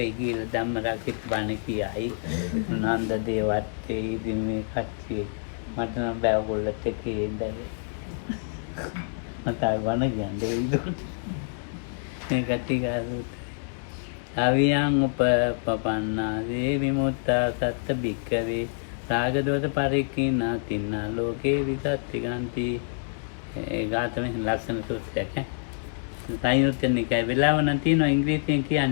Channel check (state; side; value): silent; right; digital silence